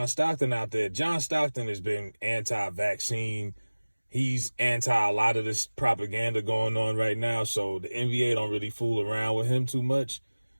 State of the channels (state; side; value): inverted; both; correlation -1.00